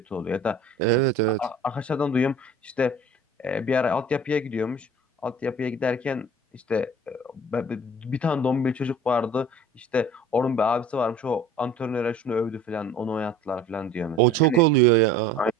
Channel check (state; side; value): normal; both; correlation 0.45